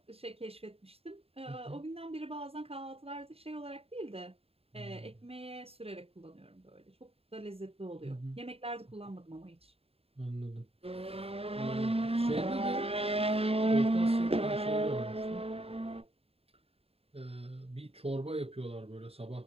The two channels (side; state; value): left; late; 0.28 ms